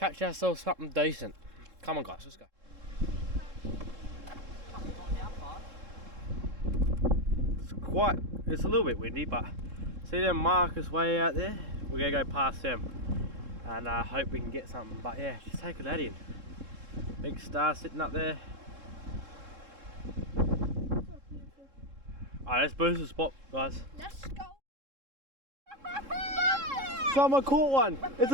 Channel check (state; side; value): late; left; 3.7 ms